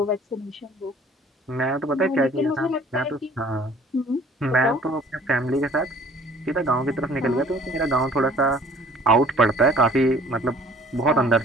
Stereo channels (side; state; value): both; normal; correlation 0.52